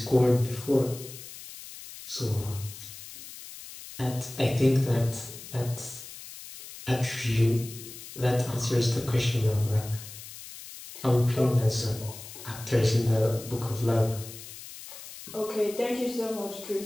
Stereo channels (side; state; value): left; noise; hiss, 14 dB below the sound